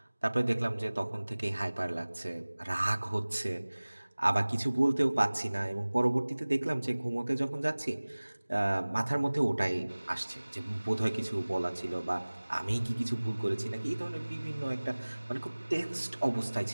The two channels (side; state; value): both; inverted; correlation -1.00